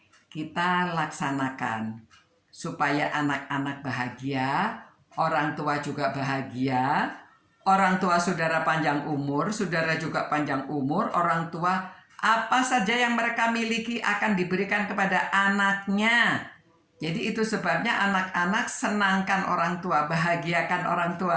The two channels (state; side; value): identical; both; correlation 1.00